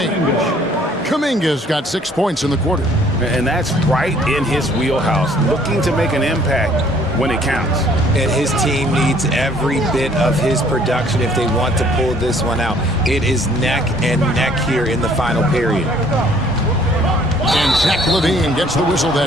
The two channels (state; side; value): normal; both; correlation 0.59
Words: Kuminga's got 6 points in the quarter. And that's right in his wheelhouse, looking to make an impact when it counts. And his team needs every bit of his production if they want to pull this one out. It is neck and neck here in the final period. And Zach LaVine gets the whistle